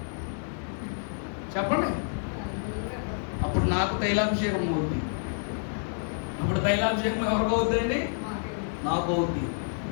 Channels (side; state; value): right; silent; digital silence